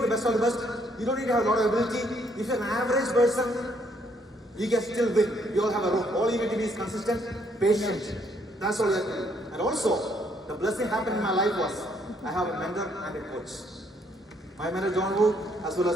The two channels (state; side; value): normal; both; correlation 0.69